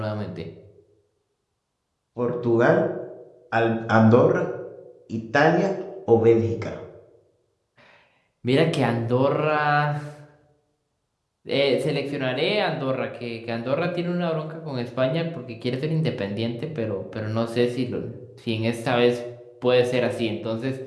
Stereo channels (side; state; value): both; identical; correlation 1.00